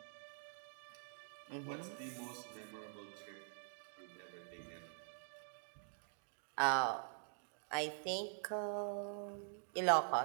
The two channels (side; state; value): left; silent; digital silence